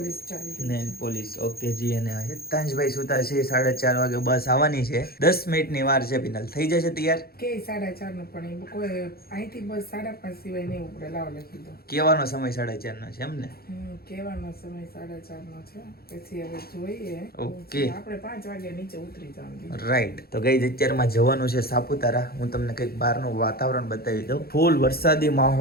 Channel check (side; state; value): right; late; 0.44 ms